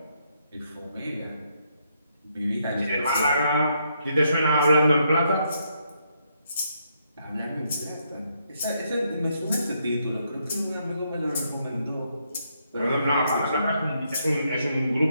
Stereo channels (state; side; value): inverted; both; correlation -0.76